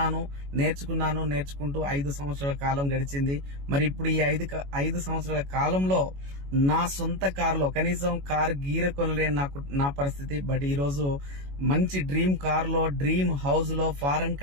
నేర్చుకుంటూ 5 సంవత్సరాల కాలం గడిచింది. మరి ఇప్పుడు ఈ 5 సంవత్సరాల కాలంలో నా సొంత కారులో కనీసం కార్ గీర కొనలేని నా పరిస్థితి. బట్ ఈ రోజు మంచి డ్రీమ్ కార్ లో, డ్రీమ్ హౌస్ లో, ఫారెన్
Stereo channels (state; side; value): late; left; 21 ms